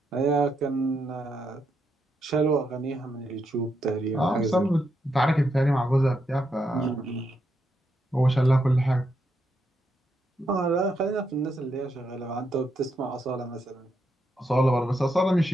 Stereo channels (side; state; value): both; normal; correlation 0.81